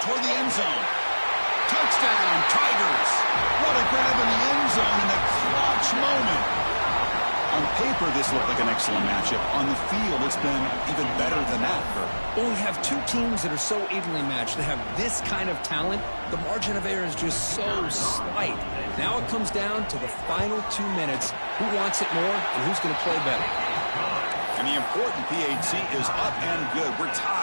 toward the end zone. Touchdown, Tigers. What a grab in the end zone in a clutch moment. On paper, this looked like an excellent matchup. On the field, it's been even better than that. Well, we have two teams that are so evenly matched. They have this kind of talent. The margin of error is just so slight. Now it comes down to the final 2 minutes. Who wants it more and who's going to play better? And the important PAT is up and good. We're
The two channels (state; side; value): inverted; both; correlation -1.00